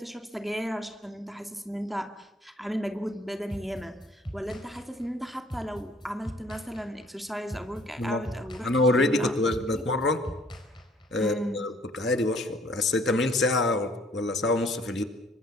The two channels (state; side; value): normal; both; correlation 0.59